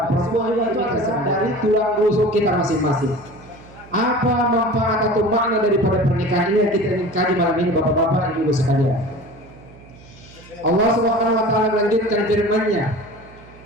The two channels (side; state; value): right; noise; hum, 22 dB below the sound